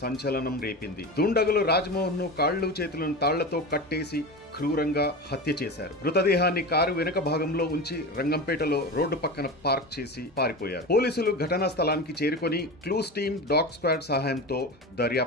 సంచలనం రేపింది. దుండగులు రాజ్మోహన్ ను కాళ్లు చేతులను తాళ్లతో కట్టేసి క్రూరంగా హత్య చేశారు. మృతదేహాన్ని కారు వెనుక భాగంలో ఉంచి రంగంపేటలో రోడ్డు పక్కన పార్క్ చేసి పారిపోయారు. పోలీసులు ఘటనా స్థలానికి చేరుకొని క్లూస్ టీమ్, డాగ్ స్క్వాడ్ సహాయంతో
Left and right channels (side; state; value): both; normal; correlation 0.26